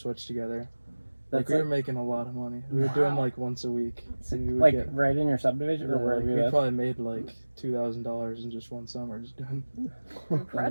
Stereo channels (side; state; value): both; inverted; correlation -1.00